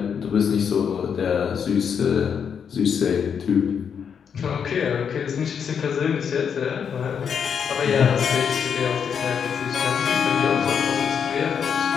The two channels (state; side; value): quieter; right; 7.2 dB